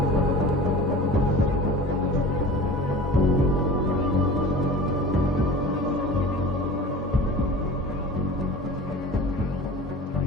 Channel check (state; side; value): normal; both; correlation 0.38